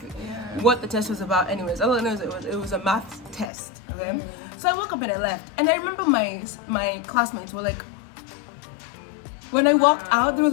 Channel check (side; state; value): right; drops out; at 3.5 s